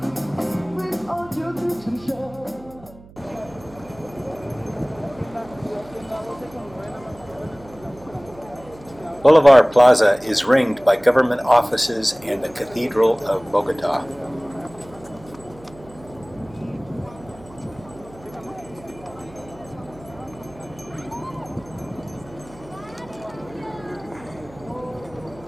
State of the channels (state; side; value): noise; right; hum, 21 dB below the sound